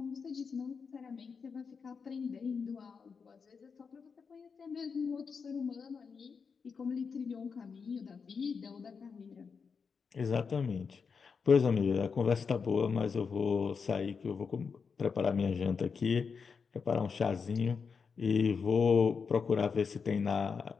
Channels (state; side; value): quieter; right; 5.6 dB